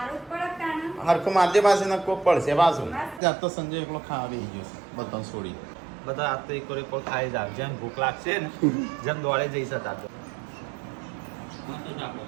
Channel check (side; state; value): left; drops out; at 3.2 s